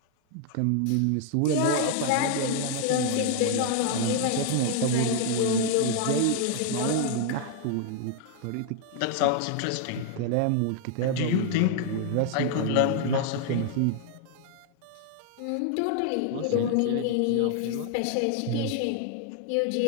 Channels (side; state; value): both; different; correlation 0.00